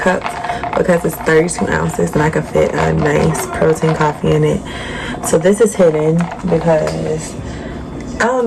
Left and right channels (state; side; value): identical; both; correlation 1.00